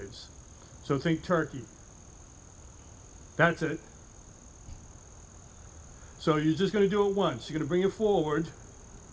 So think turkey. That's it. So you're just going to do it once. You're going to bring it forward,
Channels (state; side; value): identical; both; correlation 1.00